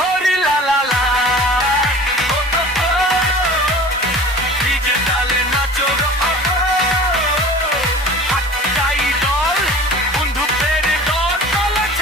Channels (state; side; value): normal; both; correlation 0.41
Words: লালা লা ডিজে তালে নাচো গো, একটাই দল, বন্ধুদের দল। চলো